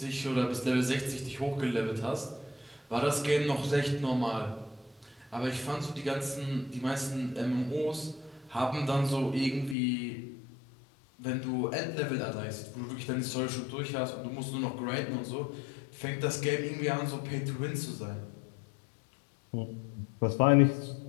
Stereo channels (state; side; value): drops out; right; at 9.8 s